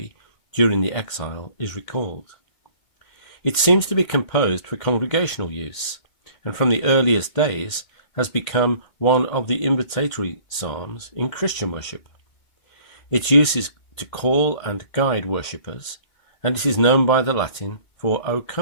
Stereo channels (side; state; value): right; late; 2.0 ms